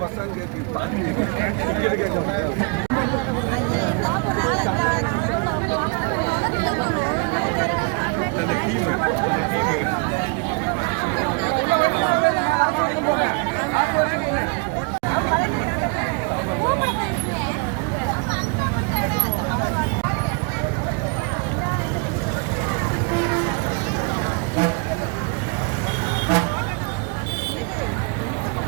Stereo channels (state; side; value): quieter; left; 33.3 dB